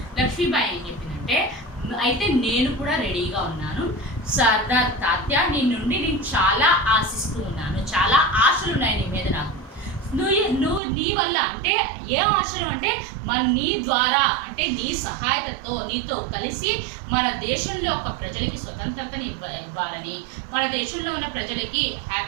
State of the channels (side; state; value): left; drops out; at 10.8 s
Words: లక్ష్మీబాయి ఏం చెప్పిందంటే అయితే నేను కూడా రెడీగా ఉన్నాను సర్దార్ తాత్య, నీ నుండి నేను చాలా ఆశిస్తూ ఉన్నాను, చాలా ఆశలు ఉన్నాయి నీ మీద నాకు. నువ్వు నీ వల్ల అంటే ఏ ఆశలు అంటే నీ ద్వారా అంటే నీ సహాయతతో నీతో కలిసి మన దేశంలో ఒక ప్రజలకి స్వతంత్రతని ఇవ్వాలని, మన దేశంలో ఉన్న ప్రజలకి